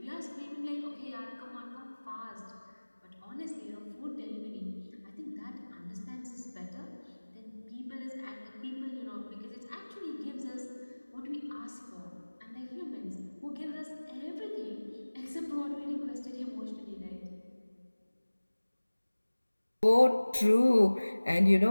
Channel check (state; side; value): inverted; both; correlation -1.00